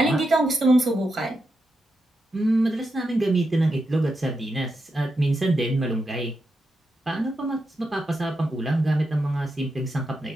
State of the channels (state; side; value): normal; both; correlation 0.86